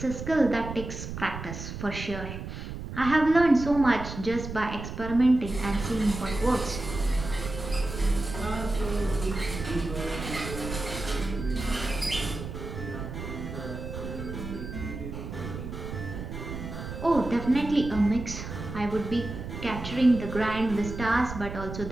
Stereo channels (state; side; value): noise; right; rumble, 8 dB below the sound